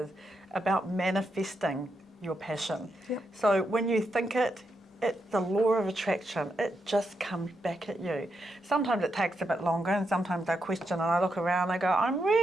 about manifesting your passion. Yep. So when you think it's the law of attraction. It just comes back at you. Sometimes it takes a bit longer, and sometimes I question and I look around and I go, I'm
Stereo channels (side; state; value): both; normal; correlation 0.83